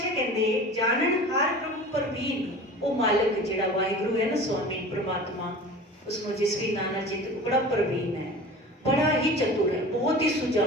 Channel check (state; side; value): normal; both; correlation 0.38